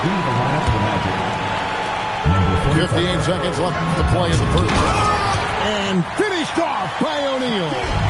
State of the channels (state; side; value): identical; both; correlation 1.00